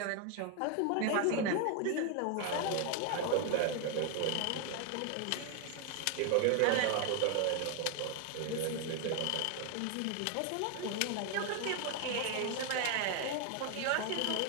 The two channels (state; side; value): different; both; correlation 0.00